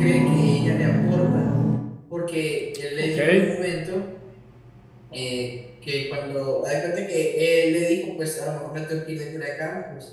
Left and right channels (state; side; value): identical; both; correlation 1.00